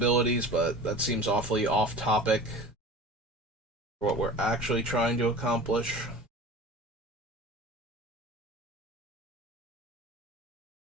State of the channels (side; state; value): both; normal; correlation 0.38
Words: but that seems awfully off topic for what we're actually trying to accomplish.